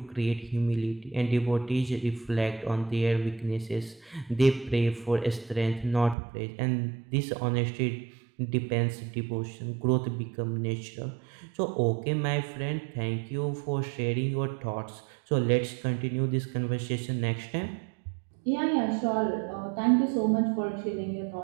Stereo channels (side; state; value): left; drops out; at 6.2 s